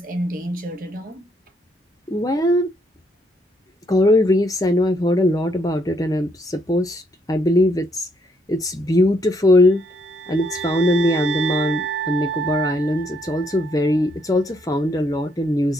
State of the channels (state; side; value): normal; both; correlation 0.72